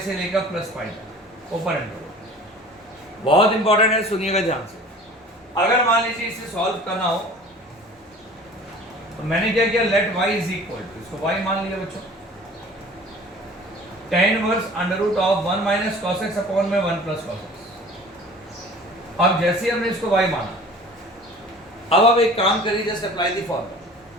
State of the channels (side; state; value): both; normal; correlation 0.45